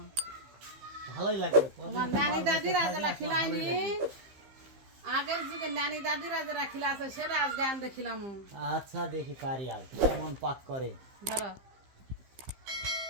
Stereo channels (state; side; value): late; left; 15 ms